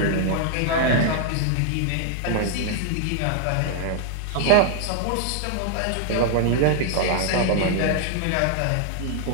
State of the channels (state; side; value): different; both; correlation 0.00